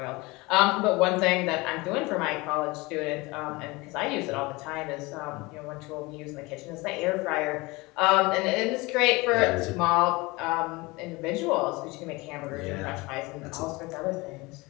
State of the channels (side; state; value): right; quieter; 23.5 dB